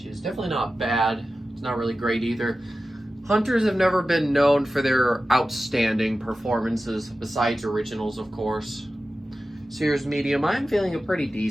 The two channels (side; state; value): both; normal; correlation 0.94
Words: is definitely not bad. It's not really great either. Hunters have never been known for their outstanding performances, besides originals, of course. So here's medium. I'm feeling a pretty